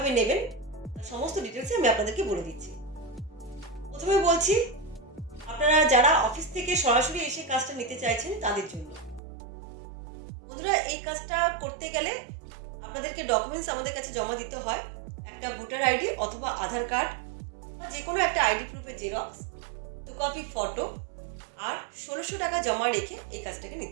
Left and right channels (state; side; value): drops out; left; at 9.2 s